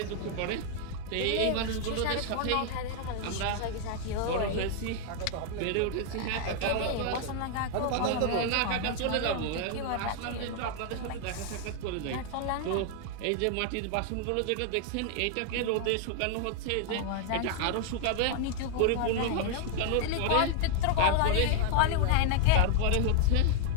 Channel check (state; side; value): different; both; correlation 0.00